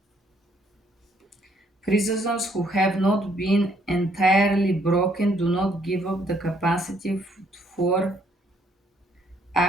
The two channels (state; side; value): normal; both; correlation 0.68